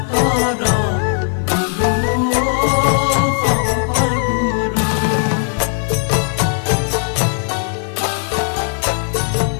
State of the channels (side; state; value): right; silent; 55 dB below the other